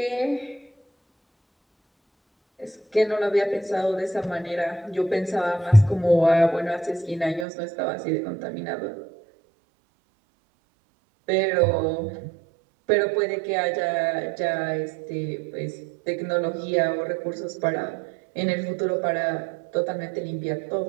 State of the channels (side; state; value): left; drops out; at 7.5 s